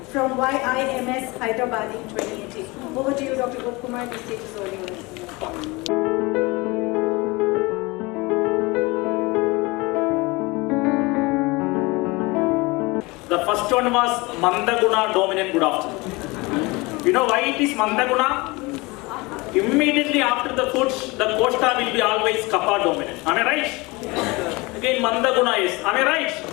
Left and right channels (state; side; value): quieter; right; 24.3 dB